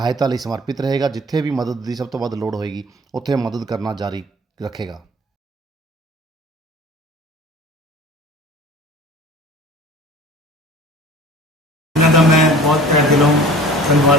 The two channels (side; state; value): both; normal; correlation 0.44